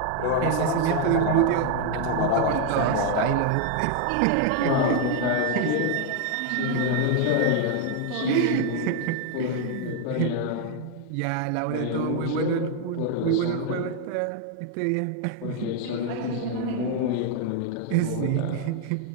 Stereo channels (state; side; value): different; both; correlation 0.00